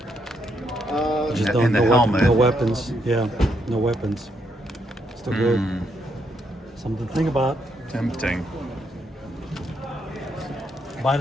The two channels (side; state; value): both; normal; correlation 0.76